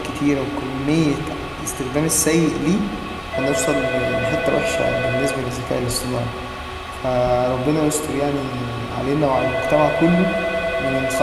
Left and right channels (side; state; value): both; identical; correlation 1.00